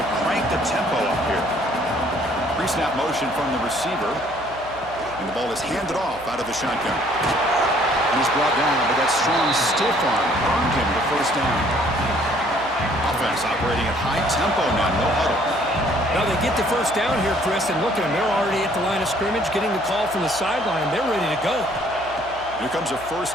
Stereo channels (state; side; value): noise; right; hum, 19 dB below the sound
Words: crank the tempo up here. Pre-snap motion from the receiver. And the ball is handed off out of the shotgun. And he's brought down, but that strong stiff arm earned him the first down. Offense operating at high tempo now, no huddle. Now they get the first down here, Chris, and look at them. They're already at the line of scrimmage, getting the call from the sideline. They're ready to go. Here comes a first